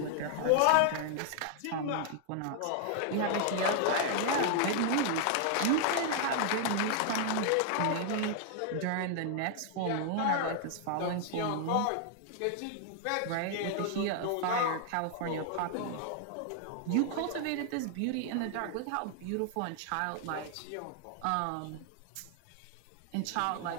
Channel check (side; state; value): both; different; correlation 0.00